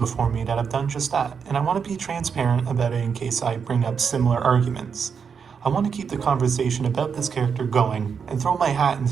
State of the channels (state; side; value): quieter; left; 6.4 dB